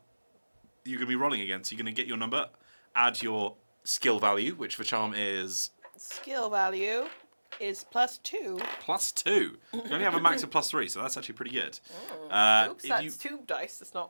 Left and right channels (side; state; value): both; inverted; correlation -1.00